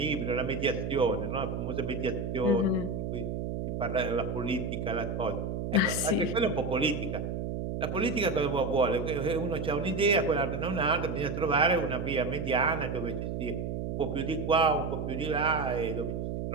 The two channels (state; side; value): noise; right; hum, 3 dB below the sound